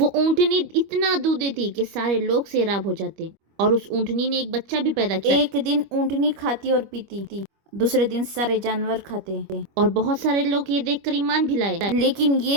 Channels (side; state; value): left; late; 25 ms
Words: اونٹنی اتنا دودھ دیتی کہ سارے لوگ سیراب ہو جاتے، اور اس اونٹنی نے ایک بچہ بھی پیدا کیا۔ ایک دن اونٹنی کھاتی اور پیتی، دوسرے دن سارے جانور کھاتے، اور بہت سارے لوگ یہ دیکھ کر ایمان بھی لائے۔ لیکن